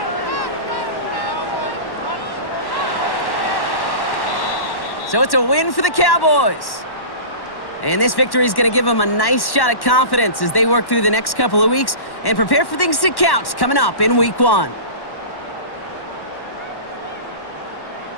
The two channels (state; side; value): late; right; 1.1 ms